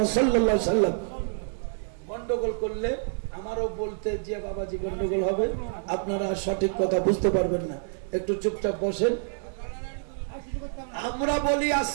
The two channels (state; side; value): silent; left; digital silence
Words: সাল্লাল্লাহু আলাইহি সাল্লাম। গন্ডগোল করলে আমারও বলতে যে বাবাজি গন্ডগোল হবে, আপনারা সঠিক কথা বুঝতে পারবেন না। একটু চুপচাপ বসেন। আমরা বলি